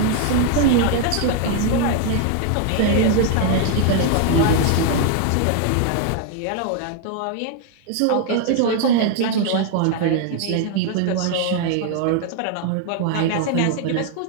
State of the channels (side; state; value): both; different; correlation 0.00